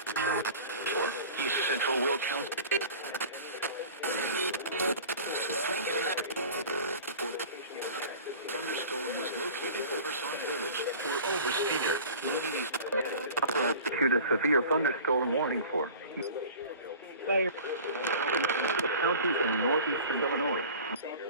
Central Will County. Thunderstorm was located over Salt Village. We're over Cedar, moving east. Issued a severe thunderstorm warning for the county in northeastern Illinois.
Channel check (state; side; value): inverted; both; correlation -0.40